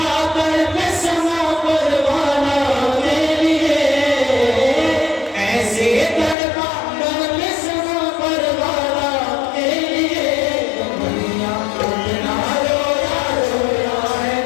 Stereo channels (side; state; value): right; drops out; at 6.4 s